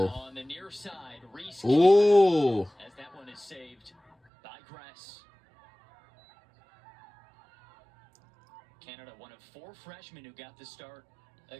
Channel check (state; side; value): drops out; left; at 4.2 s